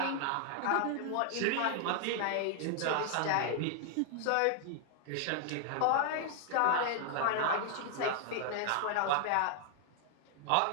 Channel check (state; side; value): different; both; correlation 0.00